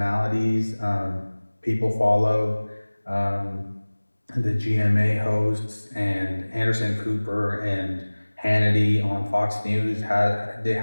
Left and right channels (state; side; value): inverted; both; correlation -1.00